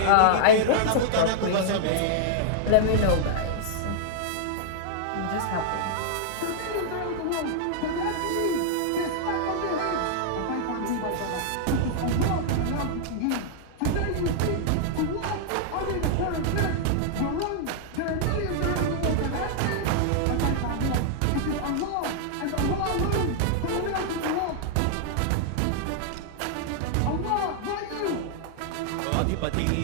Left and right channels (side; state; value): both; different; correlation -0.01